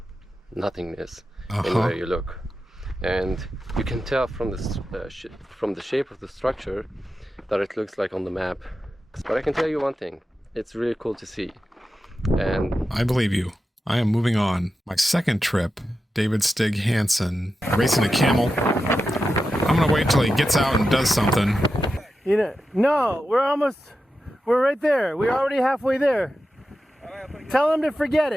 nothingness anywhere you look. And you can tell from the shape of the structure that it looks like on the map. But I can tell you one thing, it's really cool to see. And I believe you. I am moving on. My second trip, David Stig Hansen, racing a camel. I'm gonna wait till he gets out and does something. You know, no, we're right there. We're already halfway there. Tell him to forget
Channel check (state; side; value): normal; both; correlation 0.91